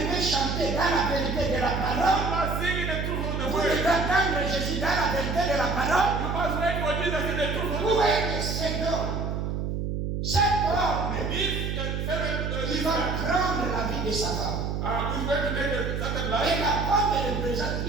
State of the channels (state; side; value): noise; right; hum, 2 dB below the sound